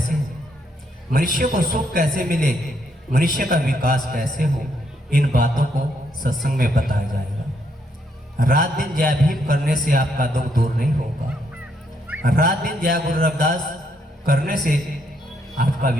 हो? मनुष्य को सुख कैसे मिले, मनुष्य का विकास कैसे हो, इन बातों को सत्संग में बताया जाएगा। रात दिन जय भीम करने से आपका दुख दूर नहीं होगा। रात दिन जय गुरु रविदास करने से आपका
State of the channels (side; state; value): both; normal; correlation 0.74